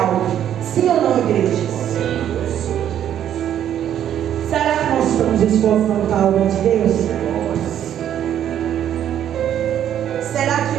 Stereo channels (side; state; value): left; quieter; 10.4 dB